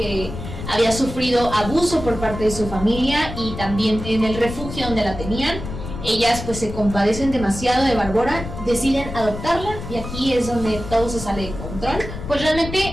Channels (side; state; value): left; noise; rumble, 9 dB below the sound